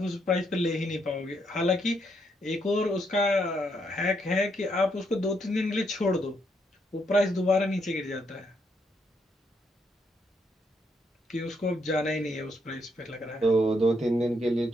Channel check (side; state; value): both; normal; correlation 0.76